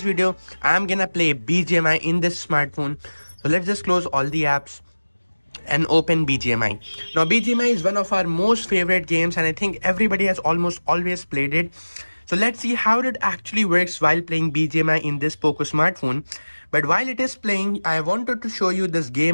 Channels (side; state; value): both; inverted; correlation -1.00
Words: video, I'm gonna play Bgmi in this smartphone. So let's just close all the apps and open Bgmi. Now Bgmi is one of our most favorite games and I think everybody has almost always played it. So let's see how it actually works while playing Bgmi in this Poco smartphone. But while it is playing, I wanted to show you this